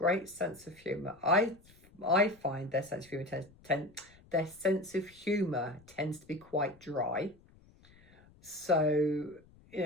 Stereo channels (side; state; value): left; noise; rumble, 27 dB below the sound